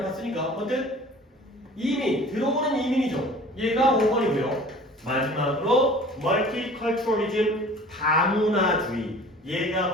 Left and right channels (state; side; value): normal; both; correlation 0.45